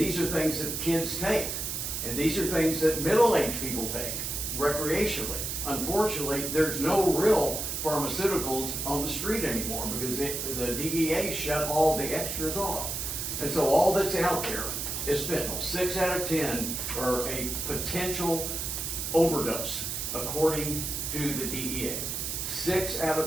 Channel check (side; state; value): right; noise; hiss, 3 dB below the sound